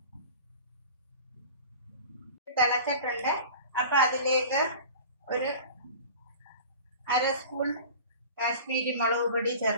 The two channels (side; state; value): both; inverted; correlation -0.38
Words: തിളച്ചിട്ടുണ്ട്. അപ്പം അതിലേക്ക് ഒരു 1/2 സ്പൂൺ കാശ്മീരി മുളക് പൊടി